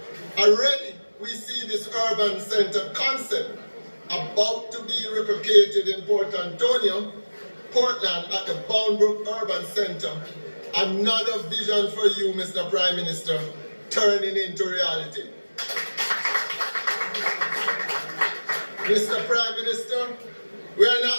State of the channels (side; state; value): both; inverted; correlation -1.00